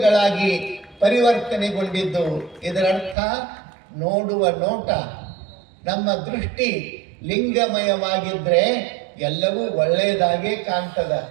ಪರಿವರ್ತನೆಗೊಂಡಿದ್ದು. ಇದರರ್ಥ ನೋಡುವ ನೋಟ, ನಮ್ಮ ದೃಷ್ಟಿ ಲಿಂಗಮಯವಾಗಿದ್ರೆ ಎಲ್ಲವೂ ಒಳ್ಳೆಯದಾಗೇ ಕಾಣ್ತದ.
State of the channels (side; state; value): left; drops out; at 3.2 s